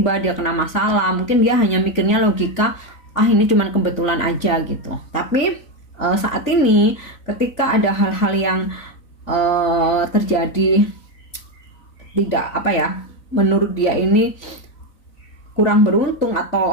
dia kena masalah, mungkin dia hanya mikirnya logika, ini cuman kebetulan aja gitu. Tapi saat ini ketika ada hal-hal yang terjadi tidak menurut dia ini kurang beruntung,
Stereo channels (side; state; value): right; late; 3.9 ms